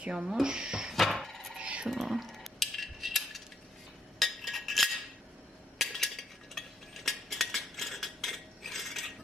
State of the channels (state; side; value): normal; both; correlation 0.74